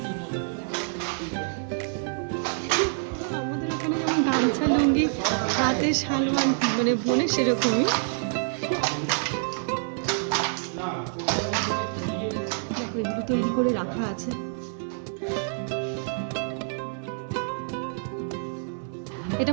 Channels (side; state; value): left; silent; 60 dB below the other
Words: আমাদের ওখানে যেমন গামছা লুঙ্গি হাতে শাল মানে বোনে, সেরকমই। দেখো এগুলো তৈরি করে রাখা আছে। এটা